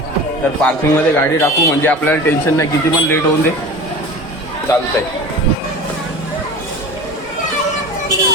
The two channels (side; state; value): both; normal; correlation 0.36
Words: तर पार्किंगमध्ये गाडी टाकू म्हणजे आपल्याला टेन्शन नाही. किती पण लेट होऊन दे चालतंय.